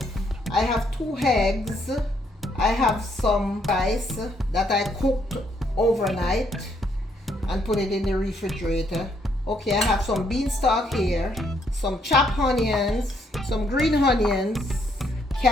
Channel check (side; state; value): both; normal; correlation 0.72